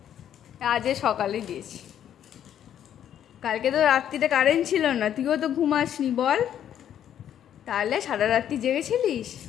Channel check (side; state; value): right; quieter; 10.1 dB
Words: আজ সকালে দিয়েছি, কালকে তো রাত্রিতে কারেন্ট ছিল না, তুইও তো ঘুমাসনি বল। তাহলে সারা রাত্রি জেগেছিলিস?